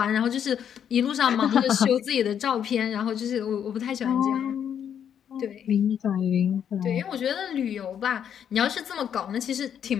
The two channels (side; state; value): right; quieter; 8.7 dB